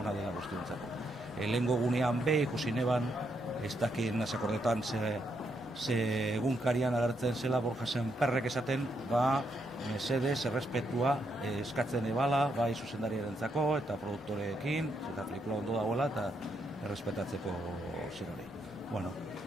dela guztiontzat. Lehengo gunean ikusi neban, ez dakit nasakordetan ze egunkarian agertzen zela Borja Sémperrek esaten, mesedez, errespetua eskatzen ebala, bai zuzendariarentzako eta produktoreekin, eta pelikula ondo dagoela eta errespetatzeko zerori.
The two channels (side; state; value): both; normal; correlation 0.78